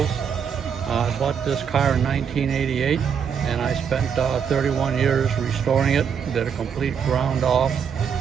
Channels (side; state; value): left; quieter; 7.3 dB